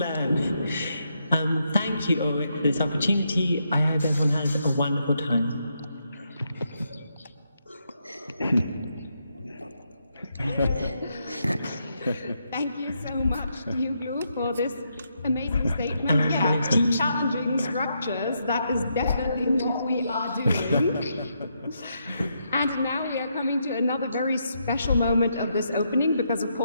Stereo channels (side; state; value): both; inverted; correlation -0.80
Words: Thank you, Ulrich, for this opportunity. I hope everyone has a wonderful time. Thank you so much, Tea Uglow, for this amazing statement. Yeah, challenging structures, that is definitely what we are doing. And now we are coming to another very special moment of this opening, because of